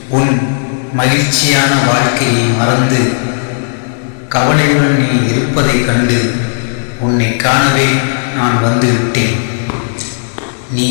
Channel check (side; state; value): right; silent; digital silence